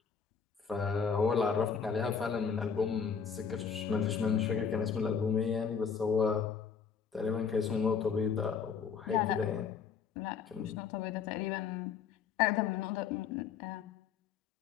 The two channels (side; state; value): right; quieter; 6.5 dB